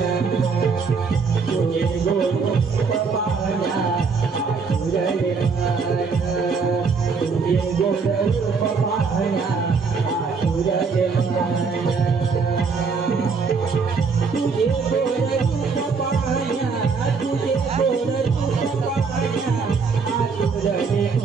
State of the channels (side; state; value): left; quieter; 5.0 dB